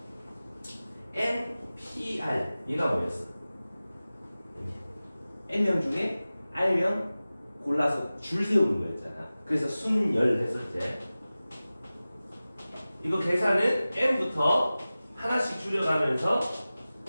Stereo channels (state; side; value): inverted; both; correlation -0.97